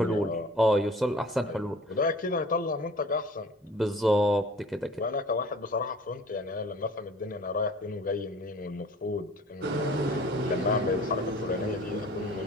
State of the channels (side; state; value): both; normal; correlation 0.47